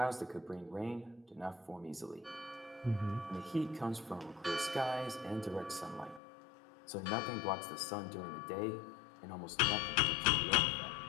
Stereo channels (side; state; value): right; drops out; at 6.2 s